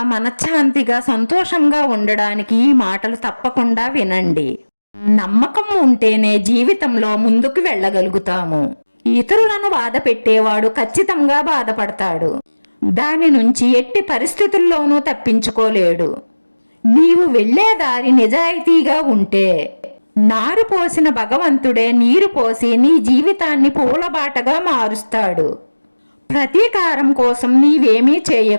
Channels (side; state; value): both; inverted; correlation -1.00